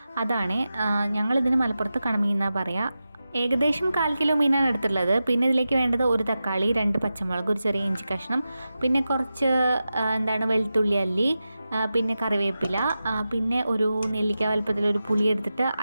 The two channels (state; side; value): inverted; both; correlation -0.92